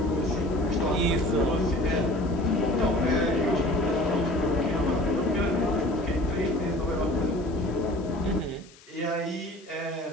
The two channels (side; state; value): left; noise; hiss, 24 dB below the sound